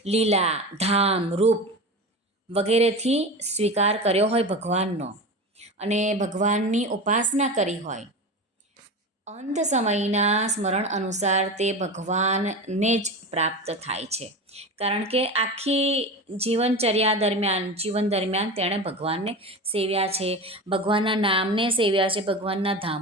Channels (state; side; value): normal; both; correlation 0.27